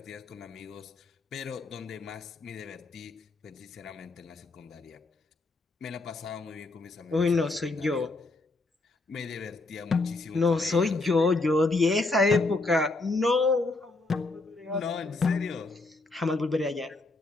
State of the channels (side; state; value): right; quieter; 3.2 dB